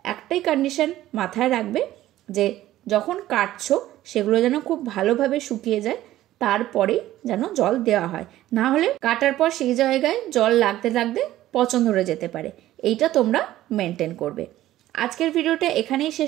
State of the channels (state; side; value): quieter; left; 14.4 dB